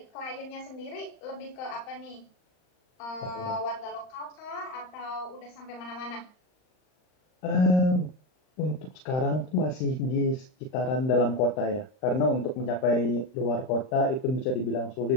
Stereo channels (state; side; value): late; right; 39 ms